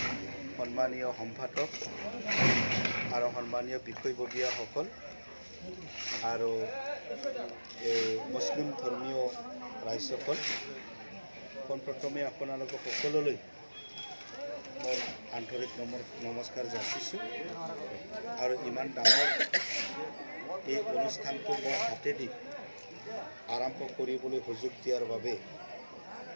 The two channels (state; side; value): inverted; both; correlation -1.00